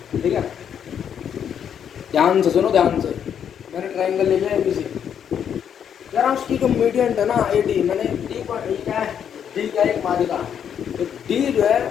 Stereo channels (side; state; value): right; quieter; 8.5 dB